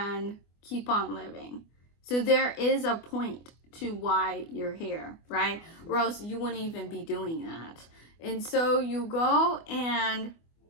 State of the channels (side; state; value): right; late; 24 ms